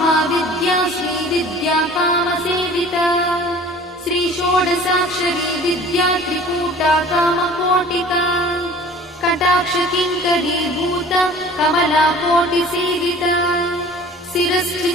श्रीविद्या कामसेविता श्रीषोडशाक्षरी विद्या त्रिकूटा कामकोटिका कटाक्षकिङ्करीभूता कमलाकोटिसेविता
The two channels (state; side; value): normal; both; correlation 0.46